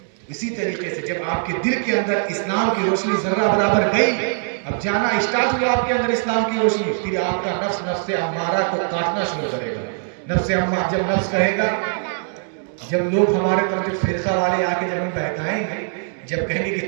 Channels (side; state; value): left; silent; 61 dB below the other